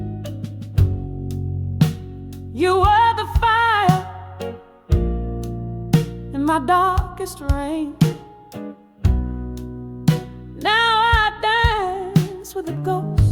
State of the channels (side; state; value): both; identical; correlation 1.00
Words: You were the fire in my darkest rain. Now I dance with the